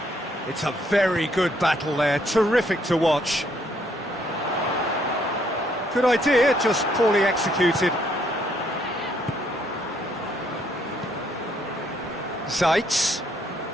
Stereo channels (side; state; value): both; normal; correlation 0.70